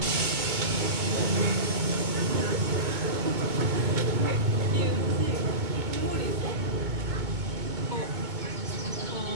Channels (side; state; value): left; late; 2.2 ms